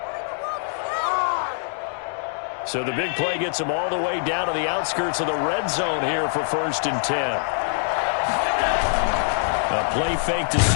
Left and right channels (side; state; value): right; silent; digital silence